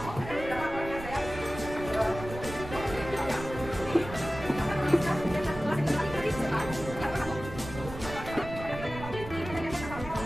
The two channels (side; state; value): right; noise; rumble, 11 dB below the sound